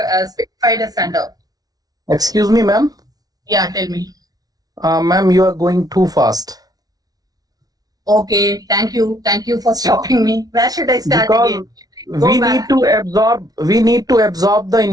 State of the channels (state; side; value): late; left; 0.18 ms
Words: as under. Excuse me, ma'am. Yeah, tell me. Ma'am, you are going too fast. Okay, thank you. Thank you for stopping me. Where should I start Because again? we need to absorb the